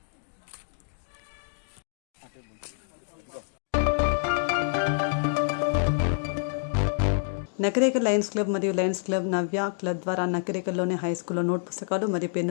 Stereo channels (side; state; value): right; silent; digital silence